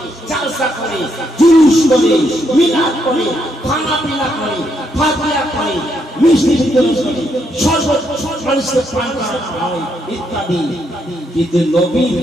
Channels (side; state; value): both; normal; correlation 0.77